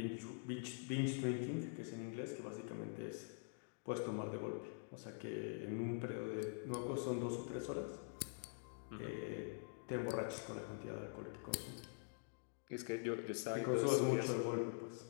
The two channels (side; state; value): right; silent; digital silence